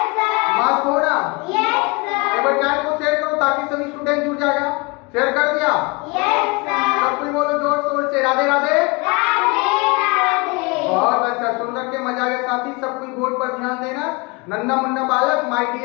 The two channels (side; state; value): right; quieter; 27.7 dB